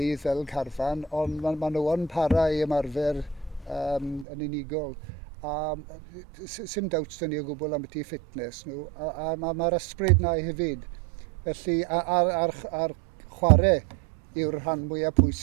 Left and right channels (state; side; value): drops out; left; at 4.2 s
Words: fel carfan, ond mae nhw yn para i ymarfer yn unigol. Sim doubts dyn ni o gwbl am beth i ffitness nhw, a mae'r ysbryd na hefyd. Felly, ar chwarae yw'r rhan mwyaf